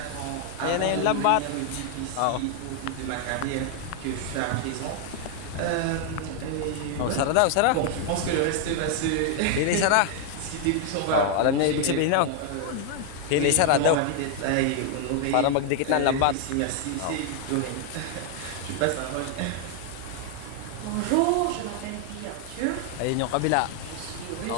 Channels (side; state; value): both; different; correlation 0.00